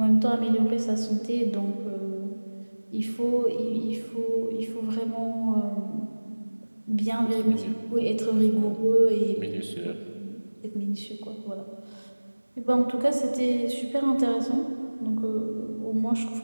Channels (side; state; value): both; inverted; correlation -1.00